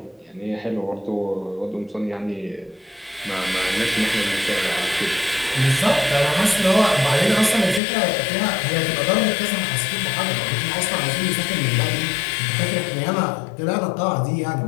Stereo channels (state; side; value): drops out; right; at 7.8 s